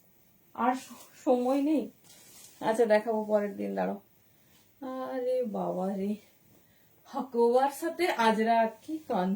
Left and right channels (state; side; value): identical; both; correlation 1.00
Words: আর সময় নেই। আচ্ছা দেখাবো পরের দিন, দাঁড়ো। আরে বাবা রে, হাকোবার সাথে আজরা, কি